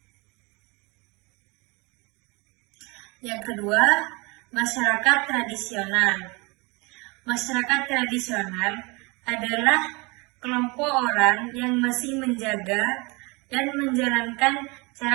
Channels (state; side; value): quieter; left; 27.3 dB